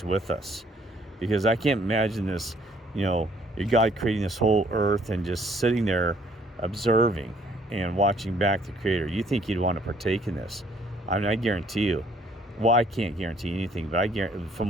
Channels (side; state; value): both; normal; correlation 0.62